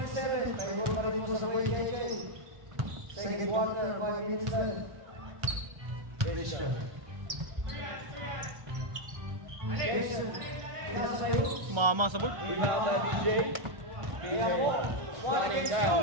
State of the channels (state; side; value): late; left; 1.3 ms